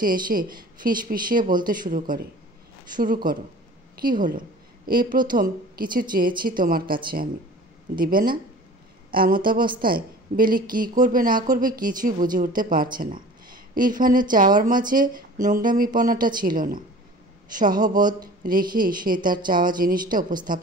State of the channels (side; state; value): both; normal; correlation 0.42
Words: এসে ফিসফিসিয়ে বলতে শুরু করো। কি হলো? এই প্রথম কিছু চেয়েছি তোমার কাছে আমি, দিবে না? এমত অবস্থায় বেলি কি করবে না করবে কিছুই বুঝে উঠতে পারছে না। ইরফানের চাওয়ার মাঝে নোংরামিপনাটা ছিল না, সহবোধ রেখেই সে তার চাওয়া জিনিসটা